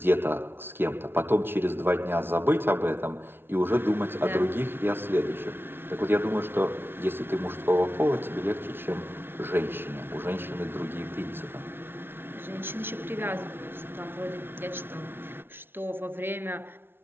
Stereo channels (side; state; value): left; late; 0.11 ms